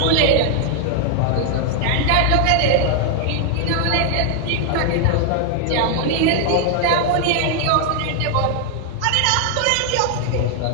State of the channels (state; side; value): different; both; correlation 0.00